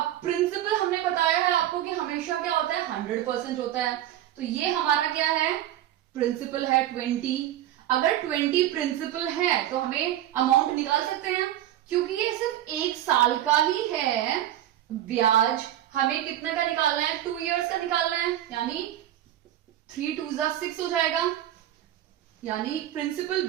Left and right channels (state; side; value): quieter; left; 12.6 dB